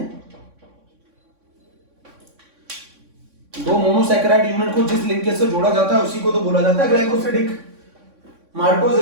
दो मोनोसैकेराइड यूनिट को जिस लिंकेज से जोड़ा जाता है उसी को तो बोला जाता है ग्लाइकोसिडिक। माल्टोज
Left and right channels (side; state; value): left; late; 3.6 ms